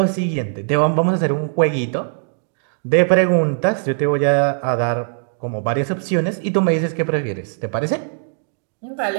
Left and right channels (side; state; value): left; silent; digital silence